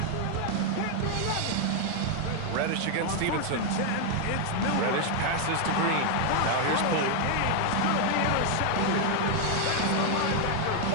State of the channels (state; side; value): different; both; correlation 0.00